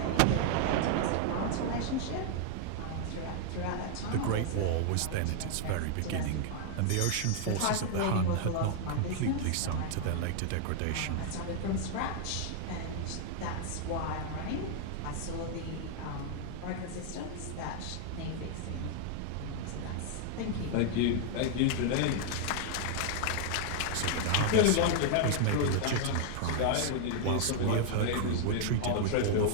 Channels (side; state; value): both; different; correlation 0.00